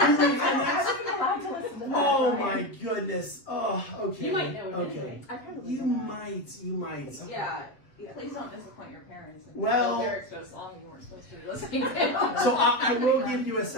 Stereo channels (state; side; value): late; right; 7.6 ms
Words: wasn't allowed to listen to that. Oh my goodness. Oh, okay. You might know it Okay. anyway. I probably You don't. might. Yeah. Please don't disappoint your parents. And Well- lyrics to a song you weren't supposed to be listening to. So I will give you a